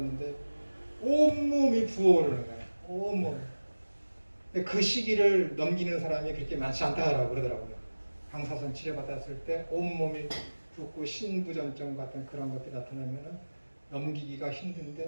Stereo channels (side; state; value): both; inverted; correlation -1.00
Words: 온몸이 부어오르는 거예요. 온몸. 그 시기를 넘기는 사람이 그렇게 많지 않다라고 그러더라고요. 방사선 치료 받았을 때 온몸이 붓고 신부전증 같은 그런 것들이 나타나면은 넘기기가